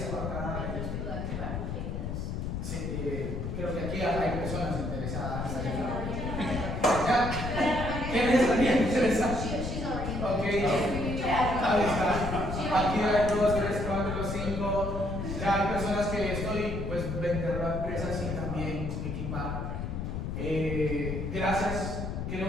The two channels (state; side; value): noise; left; rumble, 4 dB below the sound